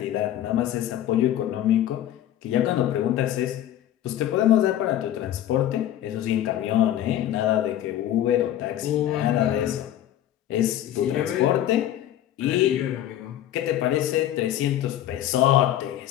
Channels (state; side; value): quieter; right; 12.1 dB